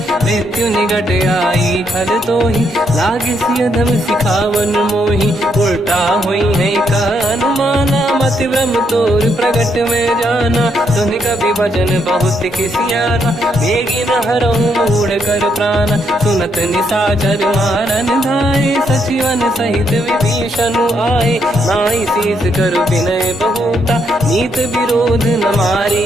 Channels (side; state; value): both; normal; correlation 0.76